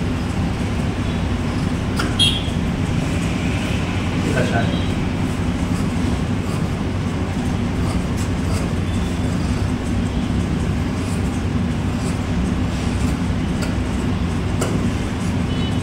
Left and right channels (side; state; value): both; identical; correlation 1.00